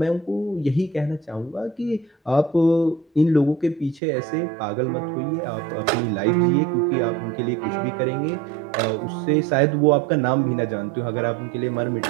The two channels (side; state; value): left; drops out; at 4.0 s